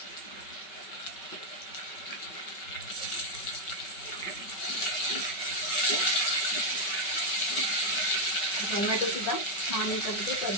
टोमॅटो सुद्धा छान याच्यामध्ये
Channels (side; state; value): right; late; 5.3 ms